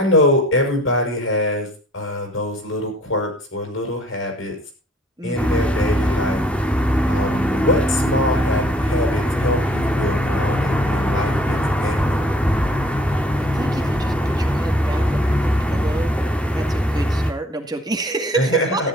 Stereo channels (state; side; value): normal; both; correlation 0.57